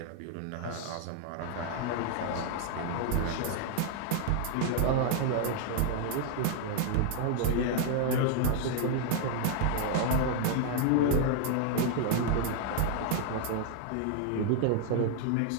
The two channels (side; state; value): both; different; correlation 0.00